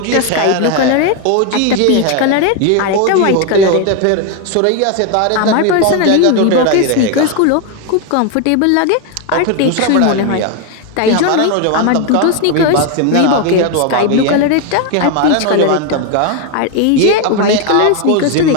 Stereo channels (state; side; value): different; both; correlation 0.01